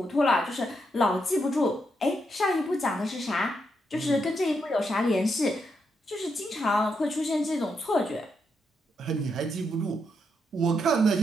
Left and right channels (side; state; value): both; normal; correlation 0.80